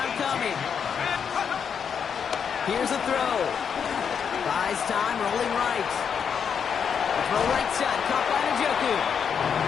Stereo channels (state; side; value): quieter; right; 7.1 dB